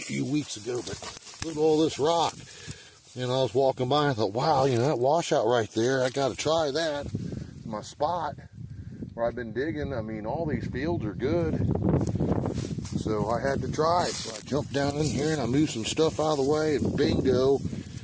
few weeks ago, but look at all this rock. And I was walking by and I thought, wow, you know, that washout right there, I got to try that. My spot where I've been digging, I mean, all these fields are good. So I had to try it. So I jumped down in here and I moved some stuff out of the way, and bingo,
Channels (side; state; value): both; identical; correlation 1.00